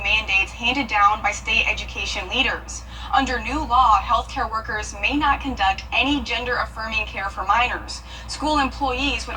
mandates handed down by state education leaders. Under new law, healthcare workers may not conduct any gender-affirming care for minors. School employees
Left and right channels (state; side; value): identical; both; correlation 1.00